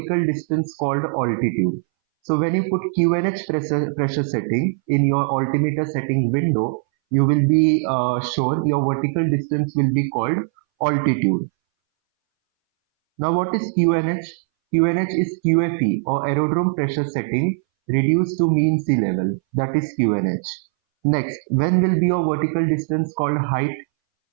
distance called altitude? So when you put QNH pressure setting in your altimeter setting window, you will be shown your vertical distance will be called altitude. Now what is QNH? QNH is QFE or aerodrome pressure setting reduced to mean sea level. That is QNH. Next, when will be your vertical distance called height?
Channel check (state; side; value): silent; left; 62 dB below the other